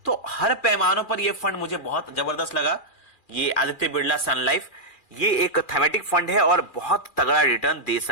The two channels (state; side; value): late; right; 2.4 ms